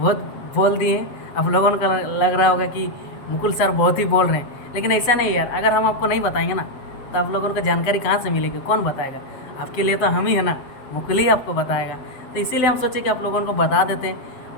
बोल दिए हैं, आप लोगों को लग रहा होगा कि मुकुल सर बहुत ही बोल रहे हैं, लेकिन ऐसा नहीं यार। अगर हम आपको नहीं बताएंगे ना तो आप लोगों को जानकारी कहाँ से मिलेगी, कौन बताएगा? आपके लिए तो हम ही है ना, मुकुल ही आपको बताएगा। तो इसीलिए हम सोचे कि आप लोगों को बता देते हैं,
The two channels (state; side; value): late; right; 7.9 ms